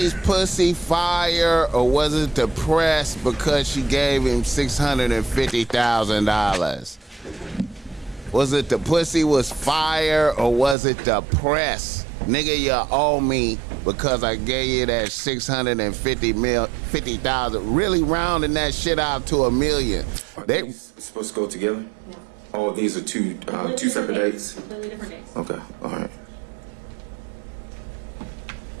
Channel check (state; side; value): drops out; left; at 10.8 s